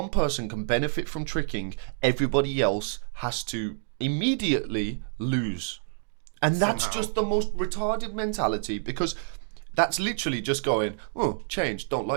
person can benefit from tricking, everybody else has to immediately lose, and that's Somehow. just the most retarded mentality, because that's literally just going, oh, change, don't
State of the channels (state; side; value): silent; left; digital silence